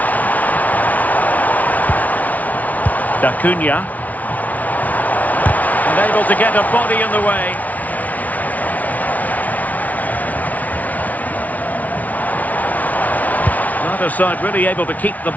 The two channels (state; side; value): late; right; 0.073 ms